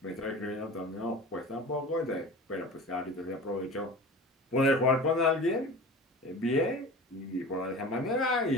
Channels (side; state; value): both; normal; correlation 0.36